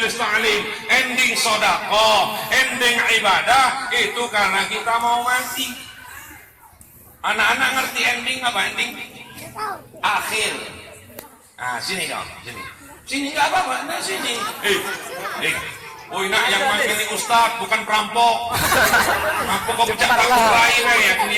ta'lim, ending sodako, ending ibadah, itu karena kita mau mati. Anak-anak ngerti ending apa ending? Akhir. Nah sini dong, sini nggak apa-apa, nah sini. Oh nak yang makan ini ustad bukan perampok. Perampok kok pecah tahu lain ya, ini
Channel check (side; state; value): both; identical; correlation 1.00